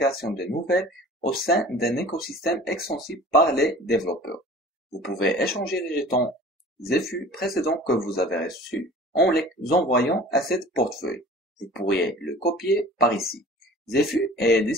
de nouvelles au sein d'un écosystème extensible par les développeurs. Vous pouvez échanger les jetons ZFU précédents que vous avez reçus en les envoyant à cette portefeuille. Vous pourriez le copier par ici. ZFU est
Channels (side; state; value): both; normal; correlation 0.44